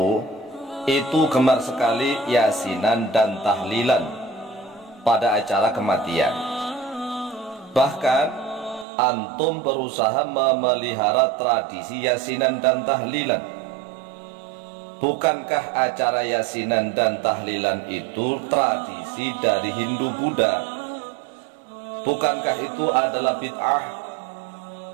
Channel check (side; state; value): left; drops out; at 8.8 s